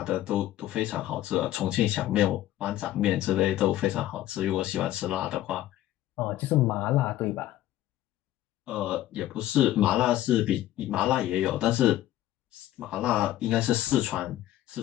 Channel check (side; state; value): right; quieter; 13.9 dB